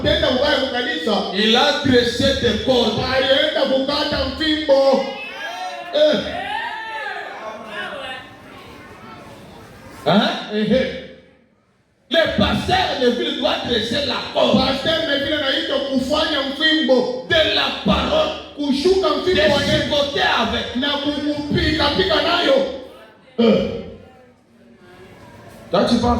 ubaya kwa kanisa, il a dressé des cordes. alienda kukata mfimbo. Le pasteur Neville doit dresser la corde Pastor Neville anaitwa kufanya mfimbo, de la parole, kushuka de mfimbo wa Yesu chicoter avec. na kukupiga piga nayo. Toi, tu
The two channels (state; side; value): identical; both; correlation 1.00